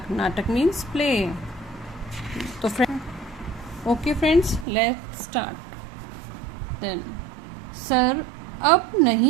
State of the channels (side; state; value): left; drops out; at 4.7 s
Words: Natak means play. So friends, let's start. Then sir अब